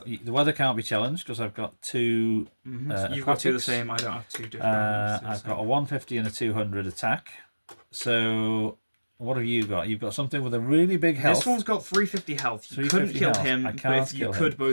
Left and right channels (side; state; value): both; inverted; correlation -1.00